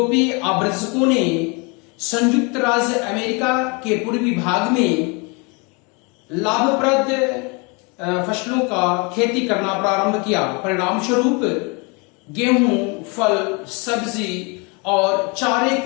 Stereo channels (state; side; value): quieter; right; 30.7 dB